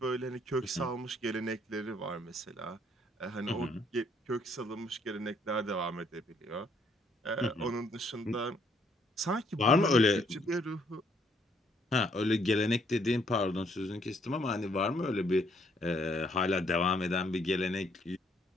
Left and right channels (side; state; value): both; normal; correlation 0.68